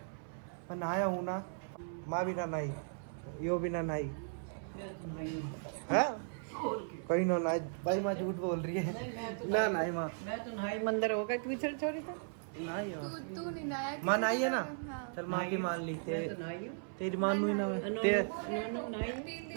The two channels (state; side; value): silent; left; 53 dB below the other